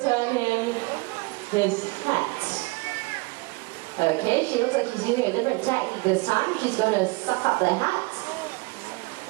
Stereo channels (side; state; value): left; quieter; 25.8 dB